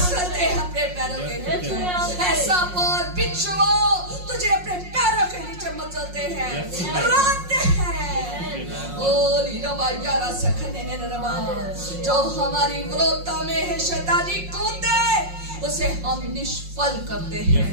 हैं अपने पैरों के नीचे। ऐसा और बिच्छुओं तुझे अपने पैरों के नीचे मसलते हैं, रोते हैं। ओ लीरबा यारा सखने ने रबा, जो हमारी विरोधता में है शैतानी कूदे, उसे हम निष्फल करते हैं,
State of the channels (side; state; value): left; late; 5.5 ms